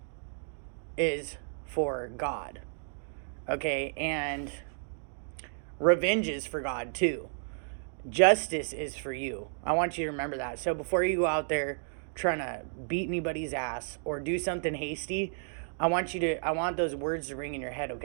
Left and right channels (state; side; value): silent; left; digital silence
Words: is for God. Okay, and revenge is for God too. Justice is for you. I want you to remember that. So before you go out there trying to beat anybody's ass or do something hasty, I want those words to ring in your head,